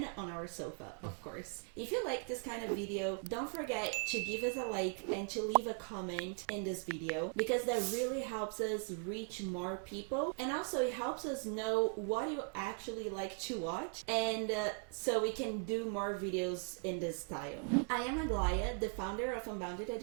on our sofa, of course. If you like this kind of video, don't forget to give us a like and to leave a comment in this video, because that really helps us reach more people, and also it helps us know what you actually like to watch, and so we can do more videos in this style. I am Aglaya, the founder of Unbounded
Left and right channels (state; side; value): quieter; left; 38.9 dB